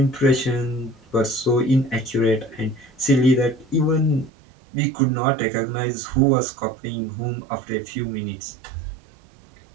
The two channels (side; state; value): left; drops out; at 4.3 s